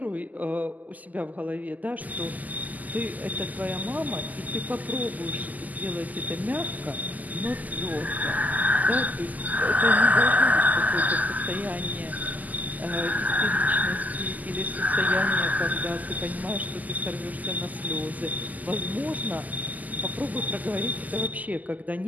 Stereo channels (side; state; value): left; late; 0.080 ms